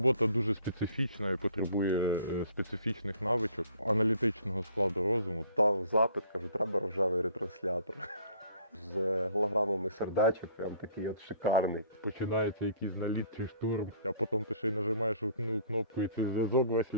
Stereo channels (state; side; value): inverted; both; correlation -0.55